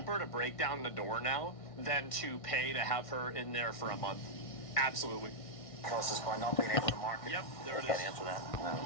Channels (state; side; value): late; right; 1.6 ms